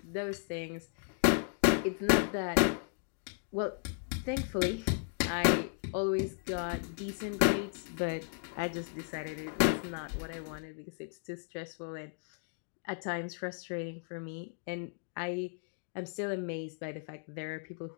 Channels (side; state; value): right; silent; digital silence